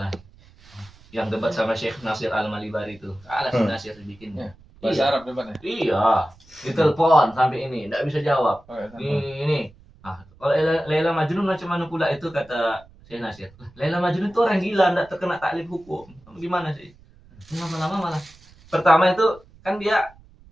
yang debat sama Syekh Nasir Al-Malibari itu, kalah si Nasir dibikinnya. Bahasa Arab depannya. Iya, ditelepon sampai ini, tidak bisa jawab. Oh, ya, Ini. Ah, kalau Laila Majnun macam mana pula itu, kata Syekh Nasir. Laila Majnun itu orang gila, tidak terkena taklif hukum. Gimana sih? Lama-lama malah. Pertama itu kan dia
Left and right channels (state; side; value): noise; right; rumble, 26 dB below the sound